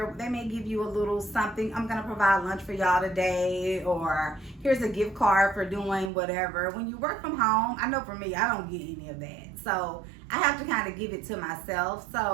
they may give you a little something. I'm going to provide lunch for y'all today, or here's a gift card for doing whatever. When you work from home, I know for me, I don't get any of that. So I have to kind of give it to myself.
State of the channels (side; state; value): left; drops out; at 6.1 s